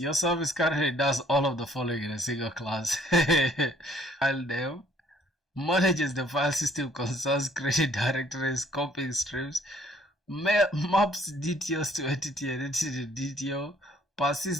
service currently does all of the following in a single class. File name, manages the file system concerns, creating directories, copying streams, maps DTOs to entity and entity to DTO,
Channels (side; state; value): both; normal; correlation 0.61